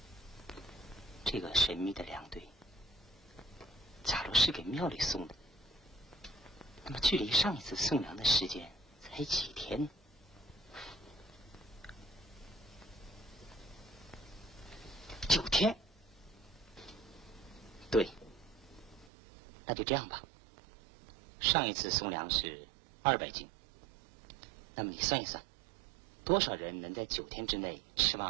这个神秘的粮队，假如是给庙里送的，那么距离上一次送粮的时间才几天呢？9天。对，那就这样吧。上一次送粮是200斤，那么你算一算，多少人能在9天之内吃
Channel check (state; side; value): drops out; left; at 19.1 s